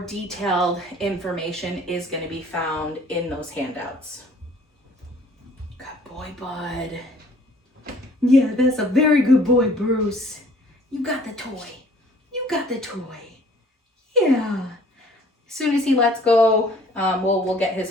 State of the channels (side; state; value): both; normal; correlation 0.55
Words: information is going to be found in those handouts. Good boy, bud. Yeah, that's a very good boy, Bruce. You got the toy. You got the toy. Yeah. As soon as he lets go, we'll get